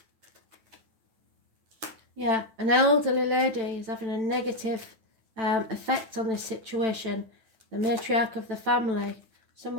Yeah, an elderly lady is having a negative effect on this situation. The matriarch of the family,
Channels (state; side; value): late; left; 9.0 ms